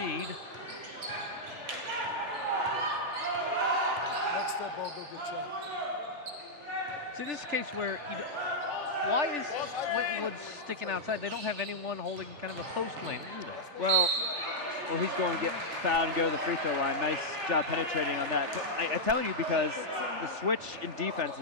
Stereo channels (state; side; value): late; left; 3.4 ms